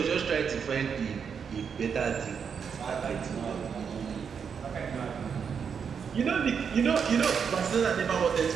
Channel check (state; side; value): quieter; left; 6.7 dB